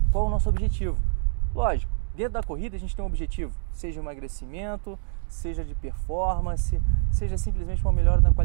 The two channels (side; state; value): left; silent; digital silence